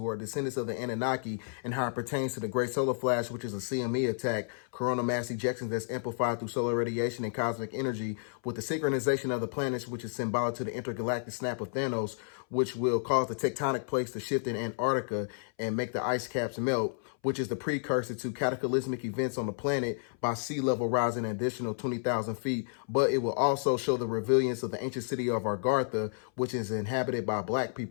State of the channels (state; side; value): silent; right; 57 dB below the other